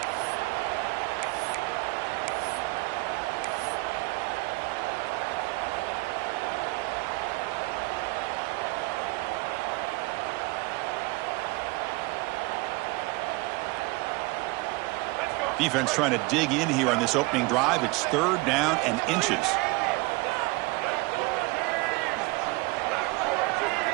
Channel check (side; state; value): left; quieter; 24.2 dB